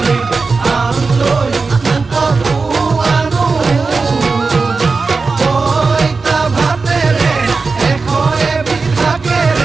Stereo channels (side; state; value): left; quieter; 4.3 dB